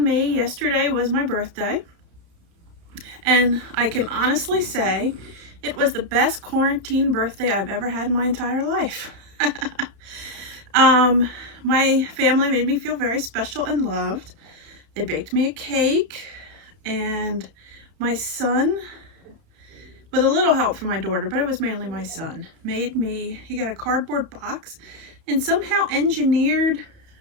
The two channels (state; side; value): late; left; 31 ms